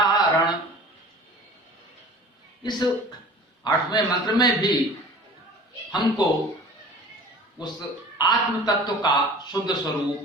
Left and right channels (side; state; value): both; normal; correlation 0.42